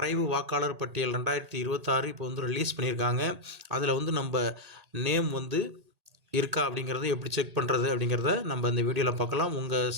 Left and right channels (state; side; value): late; left; 1.8 ms